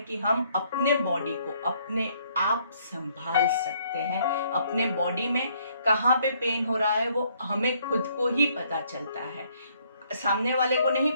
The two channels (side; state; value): both; inverted; correlation -0.67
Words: हम अपने बॉडी को अपने आप संभाल सकते हैं। अपने बॉडी में कहाँ पे पेन हो रहा है वो हमें खुद को ही पता चलता है। सामने वाले को नहीं